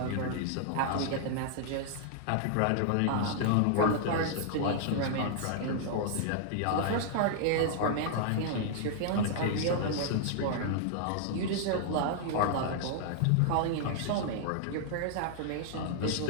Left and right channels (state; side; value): different; both; correlation -0.01